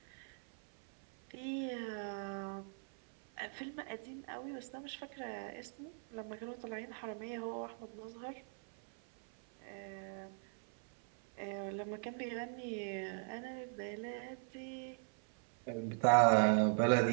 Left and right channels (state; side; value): silent; left; 51 dB below the other